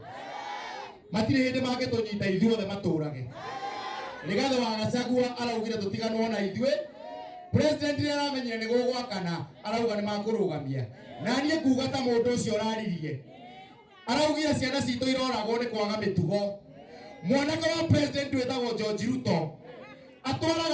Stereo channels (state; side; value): identical; both; correlation 1.00